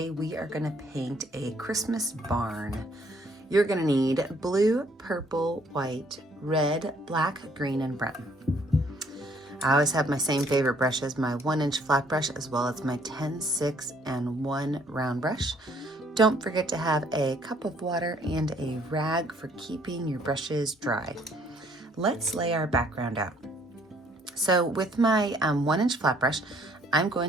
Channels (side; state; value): both; normal; correlation 0.64